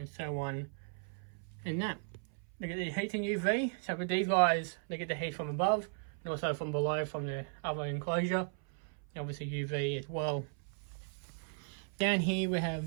so on. And that. They get their heat and UV. So with these guys, they get the heat from above and also from below from the other enclosure. And obviously UV as well. Down here we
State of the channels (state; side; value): silent; left; 54 dB below the other